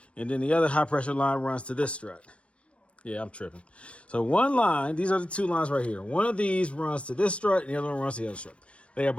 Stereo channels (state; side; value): late; right; 0.061 ms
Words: and then the other high pressure line runs to this strut. Yeah, I'm tripping. So one line, these are the two lines right here. One of these runs to this strut, and the other one runs to the other strut. They are